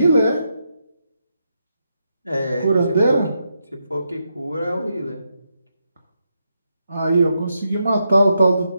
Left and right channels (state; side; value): inverted; both; correlation -0.83